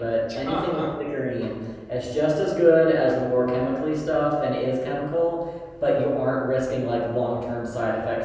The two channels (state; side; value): identical; both; correlation 1.00